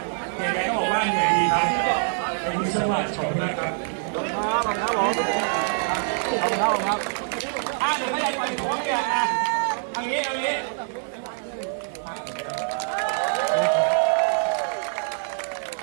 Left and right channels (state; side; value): silent; left; digital silence